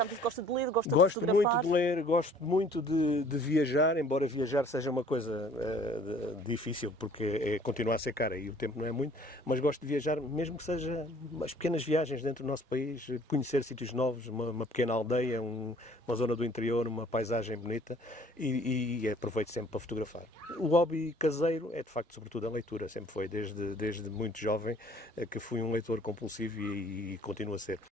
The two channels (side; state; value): both; normal; correlation 0.55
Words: me disse que gosta de ler, gosta de fotografar. Gosto muito de ler, gosto muito de viajar, embora viajar seja uma coisa difícil, porque continua a ser cara e o tempo não é muito, mas gosto de viajar, mesmo que seja umas pequenas viagens dentro do nosso país, conhecer sítios novos, uma pequena aldeia, uma zona do interior, uma paisagem bonita, e aproveito sempre para fotografar. O hobby caseiro é de facto sobretudo a leitura, sempre foi, desde muito jovem, que fui um leitor compulsivo e continuo a ser.